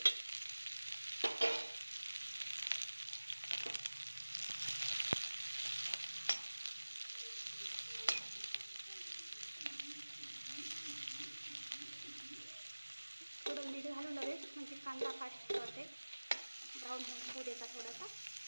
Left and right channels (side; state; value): both; inverted; correlation -1.00